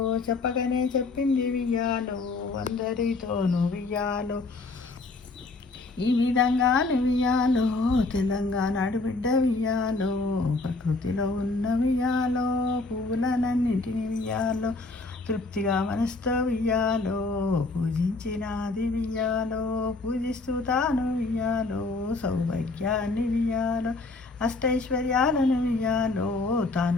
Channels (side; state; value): right; quieter; 3.5 dB